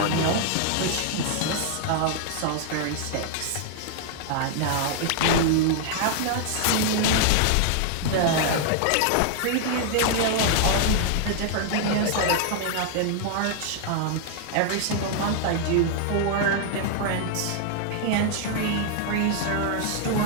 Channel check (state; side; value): different; both; correlation 0.00